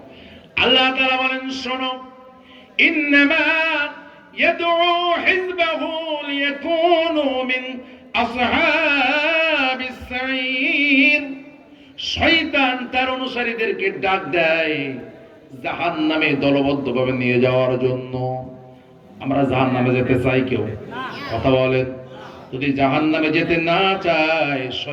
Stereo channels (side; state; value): both; identical; correlation 1.00